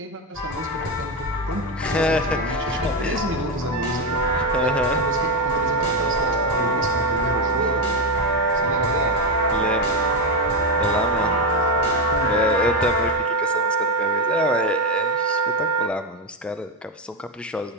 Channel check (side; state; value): both; normal; correlation 0.10